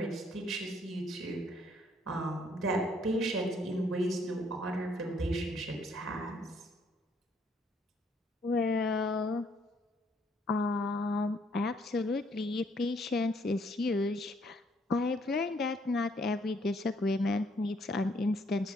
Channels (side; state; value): both; normal; correlation 0.67